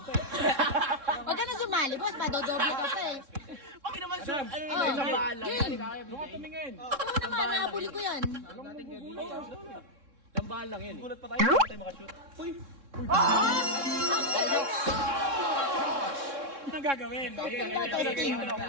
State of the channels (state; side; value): late; left; 3.6 ms